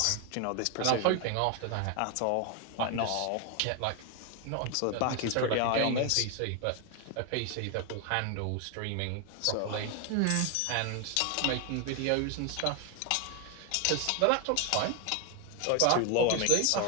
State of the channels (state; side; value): different; both; correlation 0.01